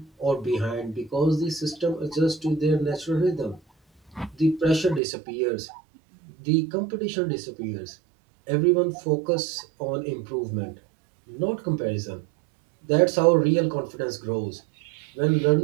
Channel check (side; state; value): left; drops out; at 5.0 s